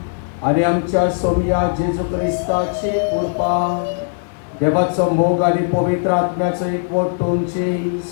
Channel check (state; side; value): silent; right; digital silence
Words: आणि आमच्या सोमिया जेजू ख्रिस्ताची कृपा, देवाचं मोग आणि पवित्र आत्म्याचं एकवट तुमची